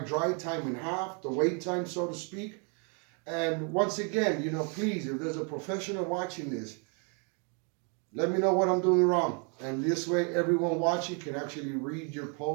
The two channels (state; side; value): quieter; left; 38.0 dB